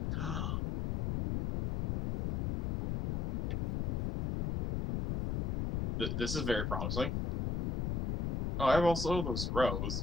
This is very promising. Oh, I have also those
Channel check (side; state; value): left; noise; rumble, 1 dB below the sound